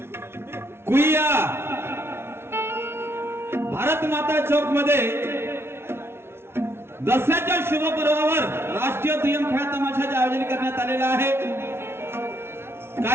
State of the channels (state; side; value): late; left; 0.12 ms